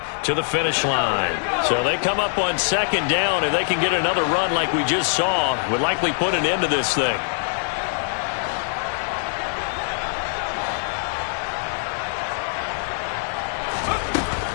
to the finish line. So they come up on 2nd down, and they can get another run like we just saw. Would likely put an end to this thing.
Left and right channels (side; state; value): right; silent; digital silence